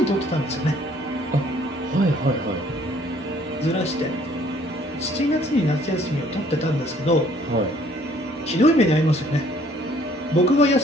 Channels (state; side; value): normal; both; correlation 0.60